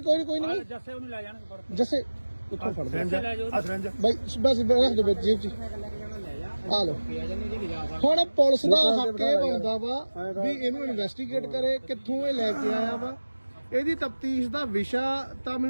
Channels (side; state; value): both; inverted; correlation -1.00